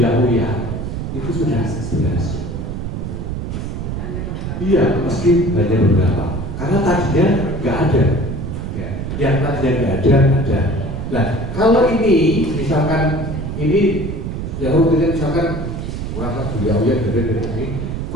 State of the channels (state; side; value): noise; right; rumble, 5 dB below the sound